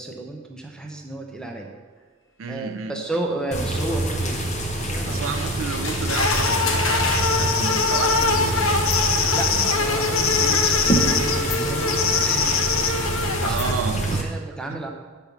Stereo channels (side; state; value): both; normal; correlation 0.21